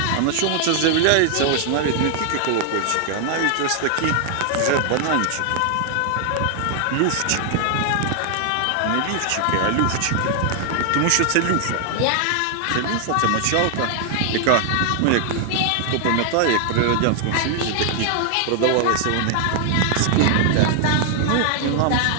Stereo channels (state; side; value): different; both; correlation 0.00